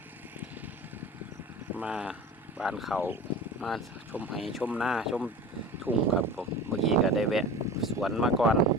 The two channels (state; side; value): normal; both; correlation 0.35